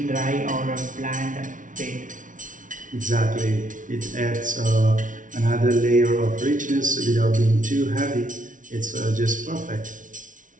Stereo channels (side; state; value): left; late; 0.38 ms